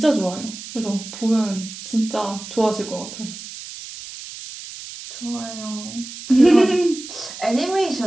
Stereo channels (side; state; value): right; noise; hiss, 12 dB below the sound